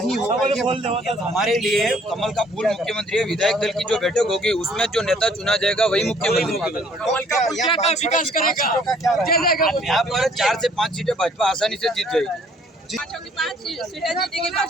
होगा। हमारे लिए कमल का फूल मुख्यमंत्री है। विधायक दल की जो बैठक होगी उसमें जो नेता चुना जाएगा वही मुख्यमंत्री। यहाँ पर 4 से 5 सीटें भाजपा आसानी से जीत जाएगी। 5 सीटें जीतेगी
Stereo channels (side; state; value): both; normal; correlation 0.60